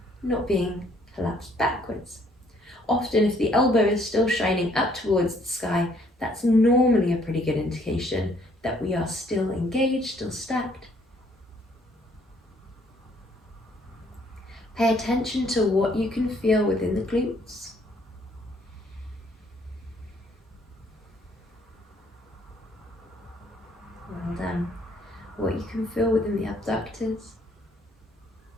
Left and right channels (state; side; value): normal; both; correlation 0.65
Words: not being collapsed backwards. Often if the elbow is still shining up towards the sky, that's normally a pretty good indication that we are still engaged, still stacked. Pay attention to what you can feel within the glutes. Well done. What you can feel within the abductors.